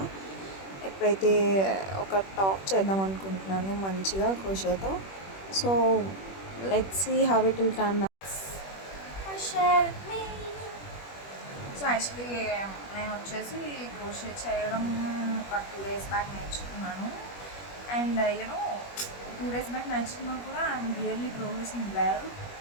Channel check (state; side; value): late; right; 21 ms